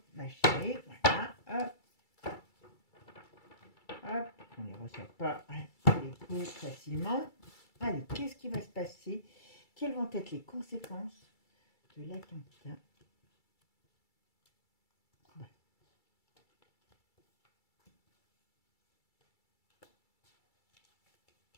voilà, hop. Hop, on ne les ressort pas les coups facilement. Allez, qu'est-ce qui va se passer? Quelles vont être les conséquences de l'attentat? Ouais.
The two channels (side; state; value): right; late; 2.3 ms